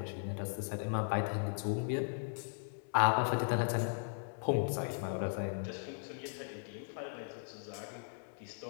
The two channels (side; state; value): right; silent; digital silence